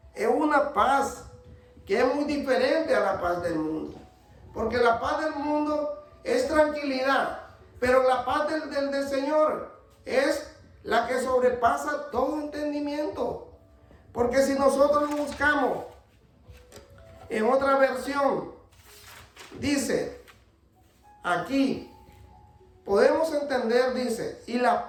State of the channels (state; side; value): identical; both; correlation 1.00